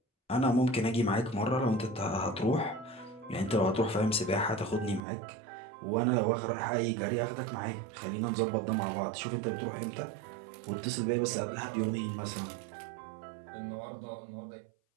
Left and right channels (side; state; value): left; drops out; at 5.0 s